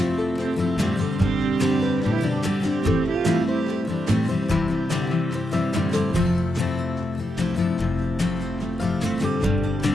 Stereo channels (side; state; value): both; normal; correlation 0.84